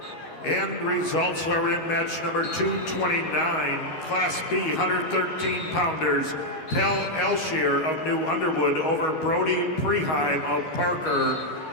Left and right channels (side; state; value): right; late; 13 ms